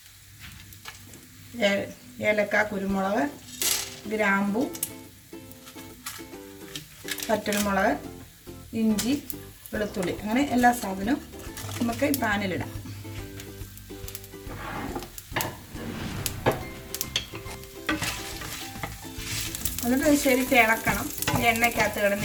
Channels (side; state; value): both; identical; correlation 1.00